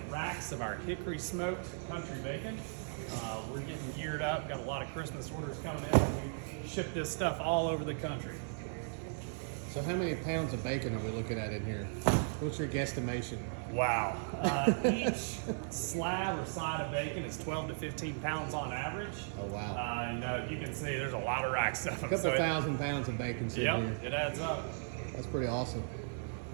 racks of our hickory smoked country bacon. We're getting geared up, got a lot of Christmas orders coming in. We ship this stuff all over the country. So how many pounds of bacon are we looking at in here? What's your guesstimation? Wow. Each slab or side of bacon is 12 to 15 pounds on average. Oh, wow. And you can see there's a lot of racks of them. A couple thousand pounds of bacon sitting here. Yep, it adds up. That's pretty awesome.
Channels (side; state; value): left; silent; 53 dB below the other